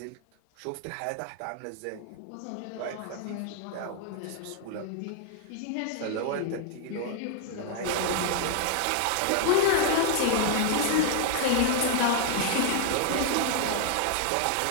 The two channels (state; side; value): different; both; correlation 0.00